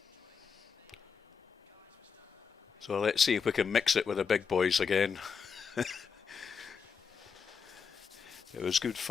So let's see if we can mix it with the big boys again. It was good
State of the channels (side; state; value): right; quieter; 6.1 dB